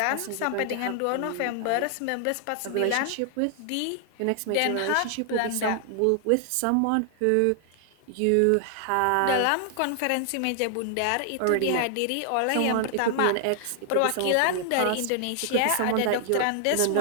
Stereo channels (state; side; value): different; both; correlation 0.00